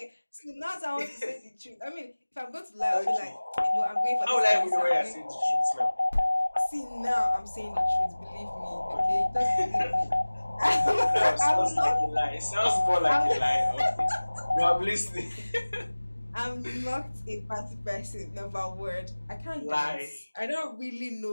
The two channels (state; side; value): inverted; both; correlation -1.00